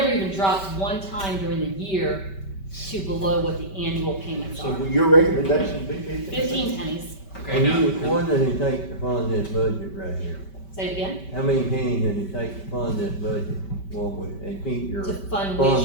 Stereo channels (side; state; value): right; late; 5.2 ms